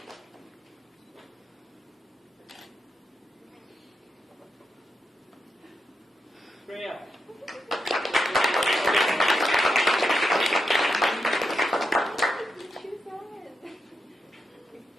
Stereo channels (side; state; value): both; normal; correlation 0.85